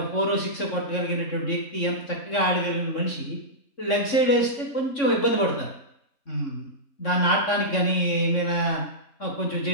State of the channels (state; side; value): late; right; 3.6 ms